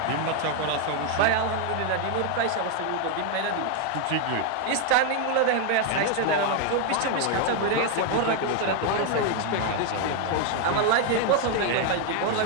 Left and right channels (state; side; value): different; both; correlation 0.01